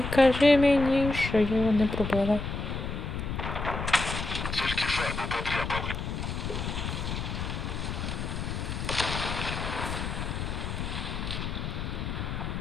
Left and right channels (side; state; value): left; noise; rumble, 4 dB below the sound